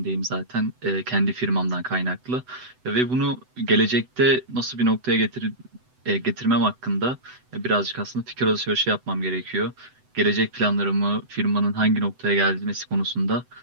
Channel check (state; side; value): late; left; 7.9 ms